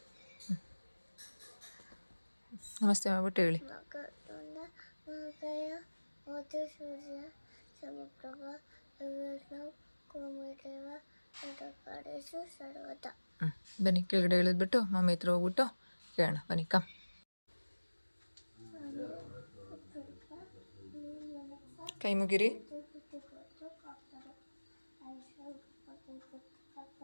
ನಮಸ್ತೆ ಮಾಡ್ಬಿಟ್ಟು ಹೇಳಿ. ಮಕರಂದ ಮಹಾಕಾಯ ಮೋತಿ ಸೂರ್ಯ ಸಮಪ್ರಭ ವಿಷ್ಣು ಕುರುಮೇದೇವ ನಟಕಾರೇಶು ಸರ್ವದ. ಬನ್ನಿ ಕೆಳಗಡೆ ಇಳಿದ್ಬಿಟ್ಟು ಮಮ್ಮಿ ಹತ್ರ ಹೋಗ್ಬಿಟ್ಟು ಕೇಳೋಣ. ಬನ್ನಿ ಕಮ್. ಕೈ ಮುಗಿರಿ.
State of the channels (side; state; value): both; inverted; correlation -1.00